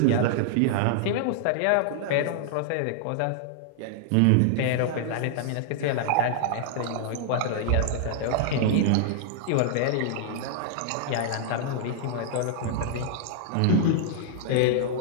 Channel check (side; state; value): both; different; correlation -0.01